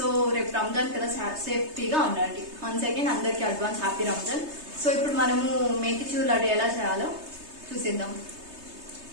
రేపు రంజాన్ కదా, సేఫ్టీగా ఉండండి. వన్స్ అగైన్ అందరికి అడ్వాన్స్ హ్యాపీ రంజాన్. సో ఇప్పుడు మనము మేతిచూర్ లడ్డు ఎలా చేయాలో చూసేద్దాం.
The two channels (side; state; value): left; late; 3.3 ms